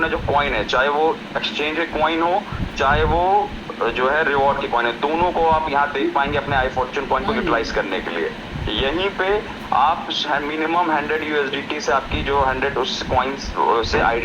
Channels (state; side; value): identical; both; correlation 1.00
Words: जो कॉइन है, चाहे वो एक्सचेंज कॉइन हो चाहे वो जो है रिवॉर्ड की कॉइन है, दोनों को आप यहाँ देख पाएंगे अपने आई फॉर्च्यून कॉइन को यूटिलाइज करने के लिए। यहीं पे आप मिनिमम 100 USDT से आपकी जो 100 उस कॉइन से